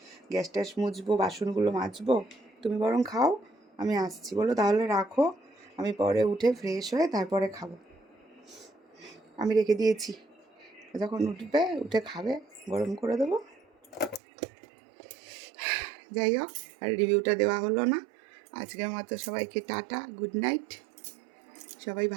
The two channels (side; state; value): left; drops out; at 14.2 s